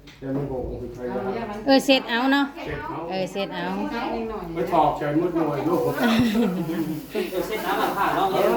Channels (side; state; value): both; identical; correlation 1.00